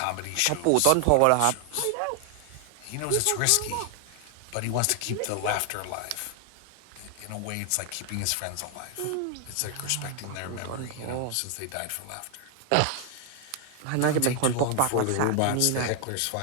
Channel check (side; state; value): both; different; correlation 0.00